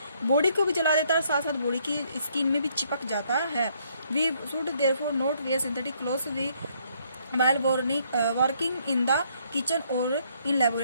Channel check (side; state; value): both; inverted; correlation -0.68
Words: बॉडी को भी जला देता है, साथ साथ बॉडी की स्किन में भी चिपक जाता है। We should therefore not wear synthetic clothes we while working in the kitchen और इन